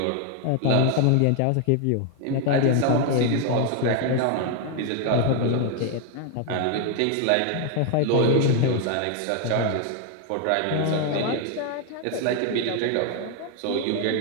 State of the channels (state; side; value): different; both; correlation 0.01